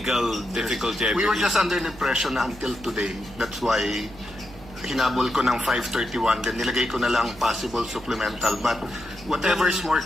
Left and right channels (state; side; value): noise; right; hum, 19 dB below the sound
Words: difficulty. I We were believe. just under the impression na until today. That's why hinabol ko ng 5:31, then nilagay ko na lang possible supplemental. But whatever is more